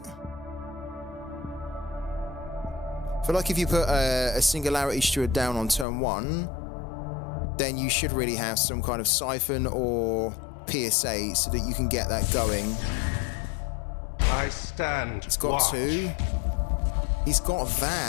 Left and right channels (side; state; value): right; drops out; at 5.9 s